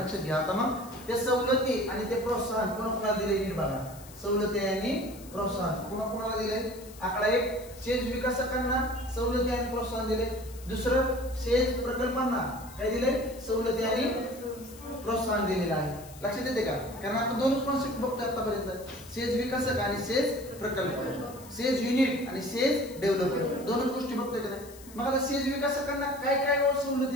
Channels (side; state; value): left; noise; hiss, 19 dB below the sound